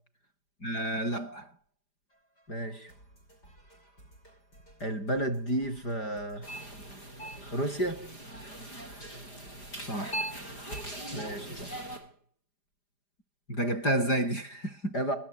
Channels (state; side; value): late; right; 5.0 ms